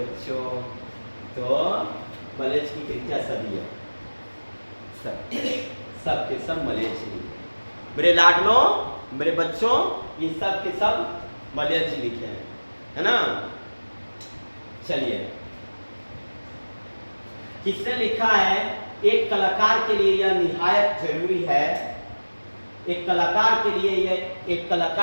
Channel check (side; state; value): both; inverted; correlation -1.00